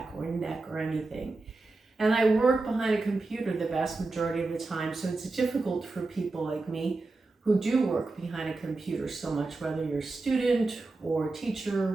or neck or anything. And I work behind a computer the vast majority of the time, so it's difficult for people like me who do work behind a computer so much, whether you're a student or a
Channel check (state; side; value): quieter; left; 3.4 dB